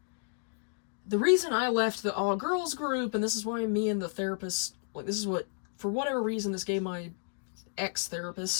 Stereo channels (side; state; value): right; silent; digital silence